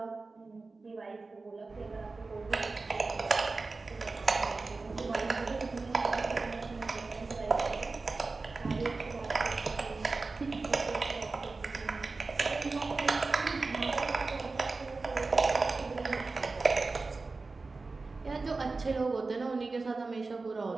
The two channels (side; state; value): left; quieter; 3.8 dB